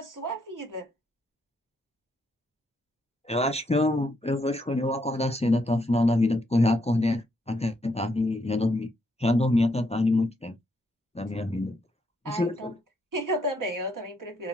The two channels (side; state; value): both; normal; correlation 0.76